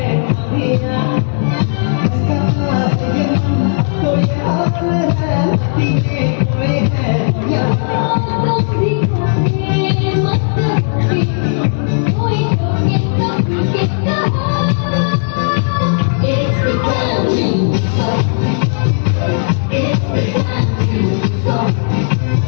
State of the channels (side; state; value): right; silent; 68 dB below the other